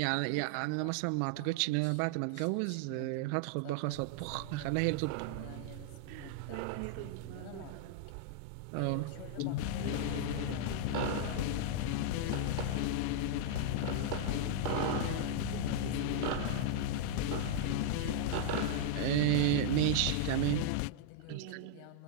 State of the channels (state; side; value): different; both; correlation -0.01